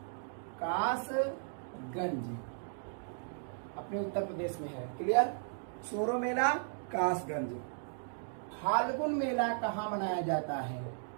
कासगंज, अपने उत्तर प्रदेश में है। क्लियर? सोरो मेला कासगंज। फाल्गुन मेला कहाँ मनाया जाता है?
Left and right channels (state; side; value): silent; left; digital silence